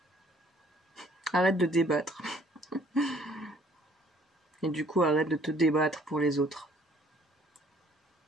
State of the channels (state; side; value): normal; both; correlation 0.59